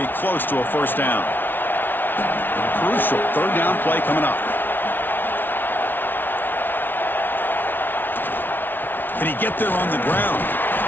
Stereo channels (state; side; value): late; right; 0.095 ms